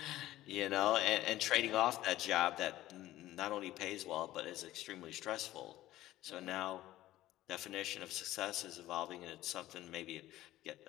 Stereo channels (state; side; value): quieter; right; 15.2 dB